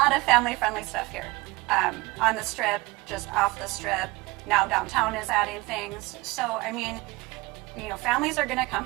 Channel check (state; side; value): quieter; left; 22.4 dB